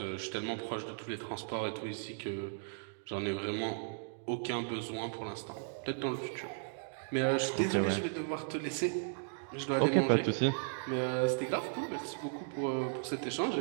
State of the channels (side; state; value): left; silent; digital silence